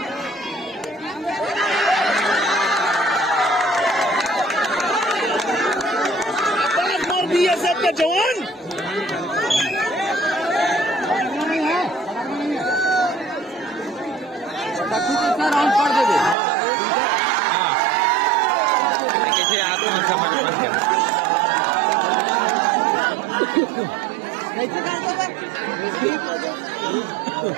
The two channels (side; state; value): left; drops out; at 16.4 s